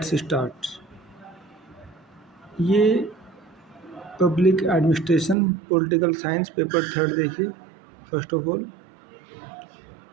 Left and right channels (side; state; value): left; drops out; at 5.4 s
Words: start. ये public administration political science paper third देखिए। First of all